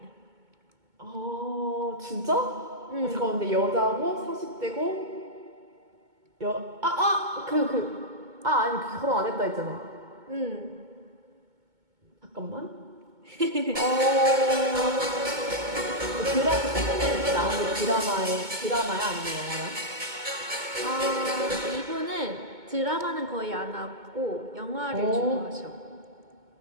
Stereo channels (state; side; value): late; left; 2.2 ms